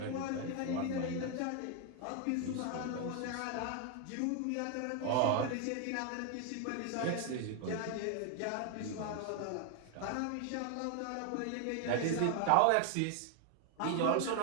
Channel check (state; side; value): different; both; correlation 0.01